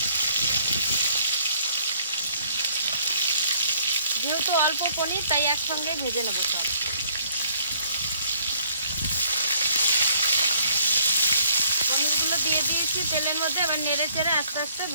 যেহেতু অল্প পনির, তাই একসঙ্গে ভেজে নেব সব। পনিরগুলো দিয়ে দিয়েছি তেলের মধ্যে, এবার নেড়ে চেড়ে আস্তে আস্তে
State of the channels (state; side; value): inverted; both; correlation -0.61